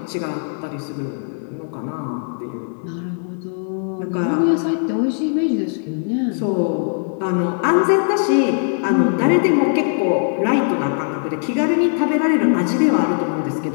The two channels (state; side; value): silent; right; digital silence